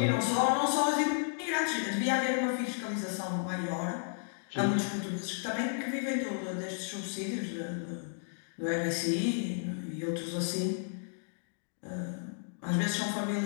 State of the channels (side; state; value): right; silent; digital silence